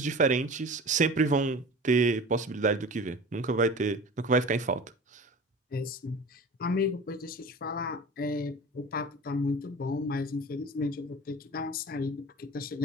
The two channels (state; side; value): normal; both; correlation 0.37